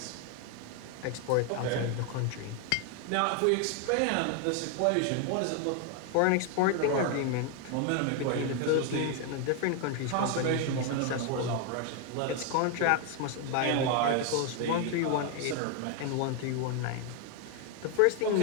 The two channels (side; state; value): both; different; correlation 0.01